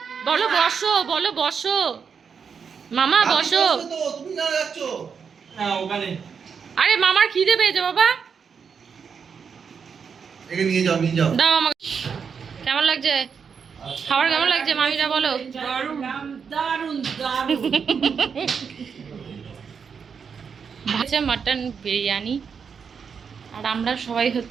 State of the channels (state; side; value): quieter; left; 6.4 dB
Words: বলো বসো, বলো বসো, মামা বসো। তো তুমি না যাচ্ছ না ওখানে আরে মামার খিদে পেয়েছে বাবা, একে নিয়ে যাও দাও আমাকে। কেমন লাগছে খাবার, কেমন লাগছে মামিরা বলো? দারুণ দারুণ। ভাজা মাটন বিরিয়ানি, আর আমরা সবাই